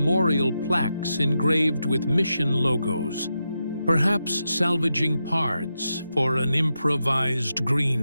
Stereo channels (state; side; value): inverted; both; correlation -0.87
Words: plaques engraved with mission logos, perhaps salvaging parts for an improvised